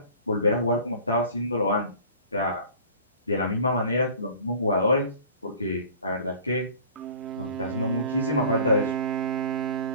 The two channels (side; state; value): both; inverted; correlation -0.45